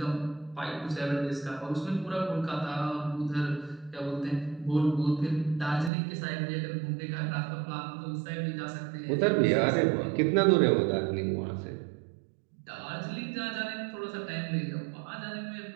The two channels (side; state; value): left; drops out; at 5.9 s